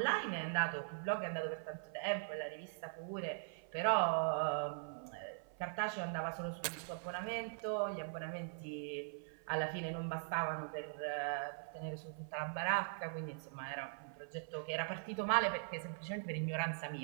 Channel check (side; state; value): left; silent; 50 dB below the other